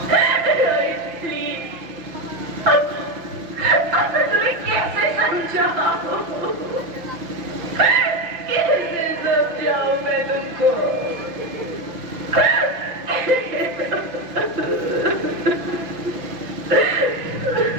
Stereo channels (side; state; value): left; late; 5.9 ms